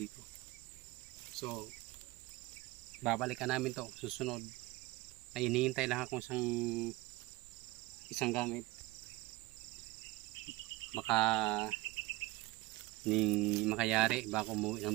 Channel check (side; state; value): left; quieter; 20.7 dB